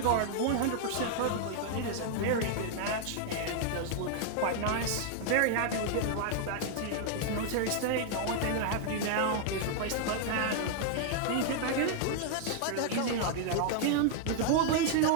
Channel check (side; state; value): both; different; correlation 0.00